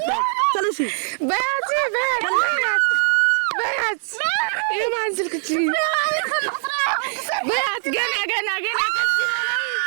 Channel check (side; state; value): left; silent; digital silence